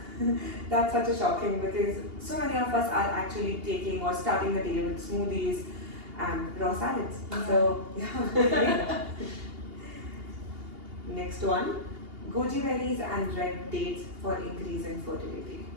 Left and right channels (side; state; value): left; late; 2.8 ms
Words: That's such a shocking because so many of us are actually taking or starting the day with smoothies and raw salads. So yeah. Next one, goji berries and red dates for increasing fertility.